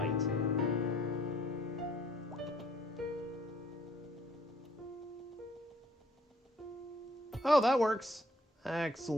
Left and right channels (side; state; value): both; normal; correlation 0.62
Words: Oh, that works.